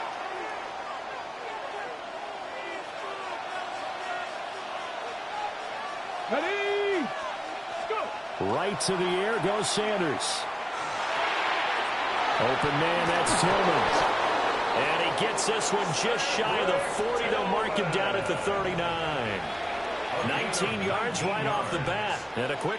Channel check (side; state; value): both; identical; correlation 1.00